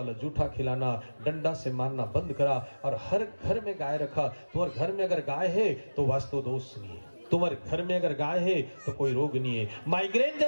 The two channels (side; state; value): both; inverted; correlation -1.00